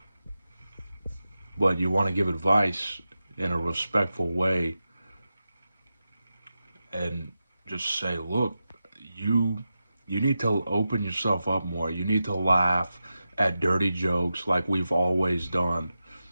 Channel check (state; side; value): inverted; both; correlation -0.91